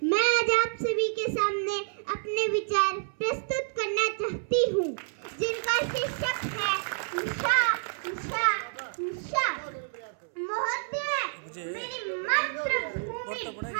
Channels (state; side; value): silent; left; 59 dB below the other